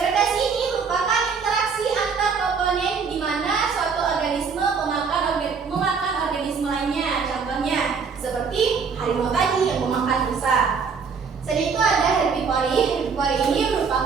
ini merupakan interaksi antar komponen di mana suatu organisme memakan organisme lainnya. Contohnya seperti harimau tadi yang memakan rusa. Selain itu ada herbivori. Herbivori ini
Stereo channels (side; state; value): left; quieter; 5.6 dB